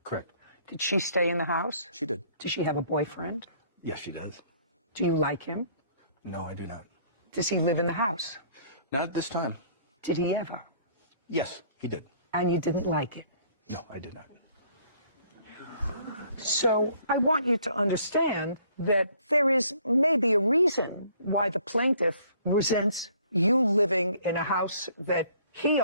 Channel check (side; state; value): both; inverted; correlation -0.59